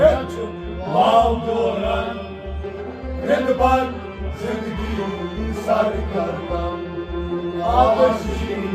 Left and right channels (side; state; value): both; identical; correlation 1.00